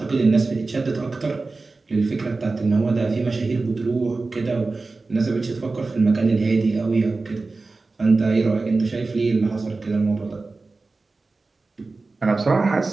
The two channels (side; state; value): left; quieter; 3.7 dB